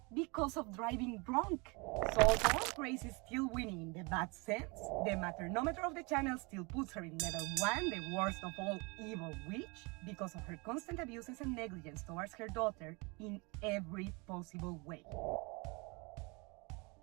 because of driving drunk. So although Grace is still winning in the bad sense, the maternometer of the channel still puts her in level 1, the worst of all evil witch, because of her constant abuses and negligence towards her daughter in every possible way.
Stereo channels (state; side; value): quieter; left; 28.9 dB